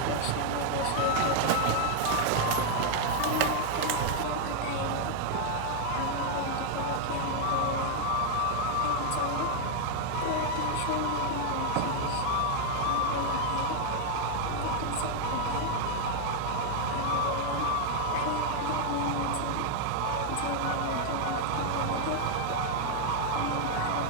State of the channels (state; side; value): different; both; correlation 0.00